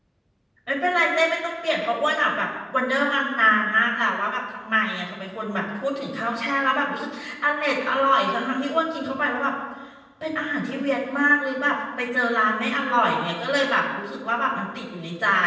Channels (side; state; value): both; identical; correlation 1.00